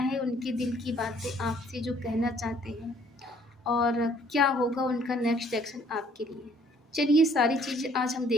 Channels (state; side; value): normal; both; correlation 0.61